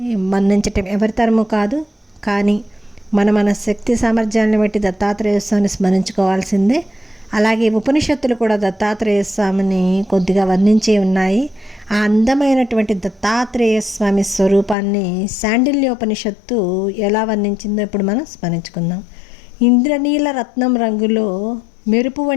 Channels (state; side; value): drops out; right; at 14.8 s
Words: మన్నించటం ఎవరి తరము కాదు, కానీ మన శక్తి సామర్థ్యాన్ని బట్టి దత్తాత్రేయ స్వామిని స్మరించుకోవాల్సిందే. అలాగే ఉపనిషత్తులు కూడా దత్తాత్రేయ స్వామిని కొద్దిగా వర్ణించే ఉన్నాయి. ఆ అందమైనటువంటి దత్తాత్రేయ స్వామి స్వరూపాన్ని శాండిల్యోపనిషత్తు ఎలా వర్ణించిందో ఇప్పుడు మనం స్మరించుకుందాం. ఇంద్రనీల రత్నం రంగులో మెరుపు